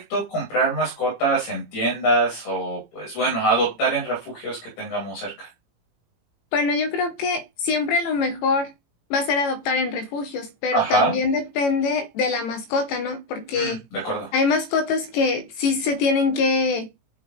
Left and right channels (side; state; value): right; late; 18 ms